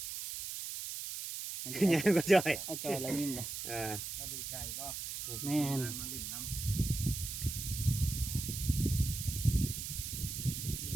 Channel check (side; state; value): right; noise; hiss, 5 dB below the sound